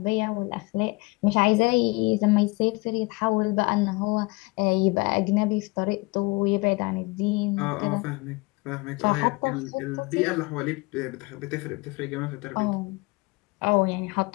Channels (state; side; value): quieter; right; 25.6 dB